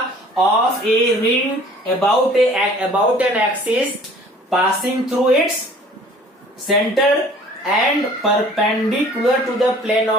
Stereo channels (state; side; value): normal; both; correlation 0.51